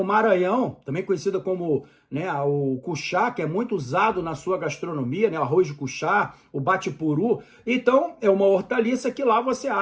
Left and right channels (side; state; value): both; identical; correlation 1.00